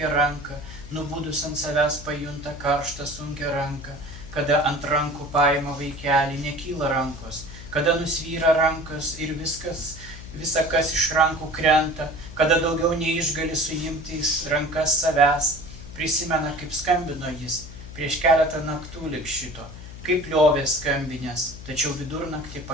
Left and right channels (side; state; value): left; noise; hum, 14 dB below the sound